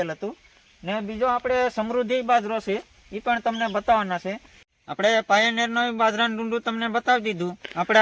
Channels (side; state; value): both; identical; correlation 1.00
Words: હતું. ને બીજો આપણે સમૃદ્ધિ બાજરો છે, એ પણ તમને બતાવવાના છે. આપણે પાયોનિયરનો બાજરાનું ડુંડું તમને બતાવી દીધું, આપણે